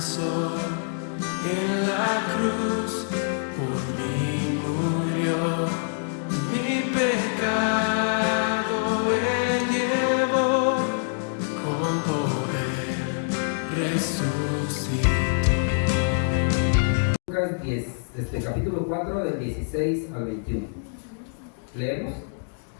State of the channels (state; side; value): silent; right; digital silence